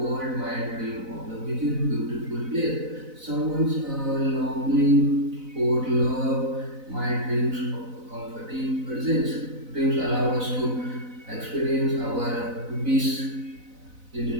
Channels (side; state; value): left; late; 4.0 ms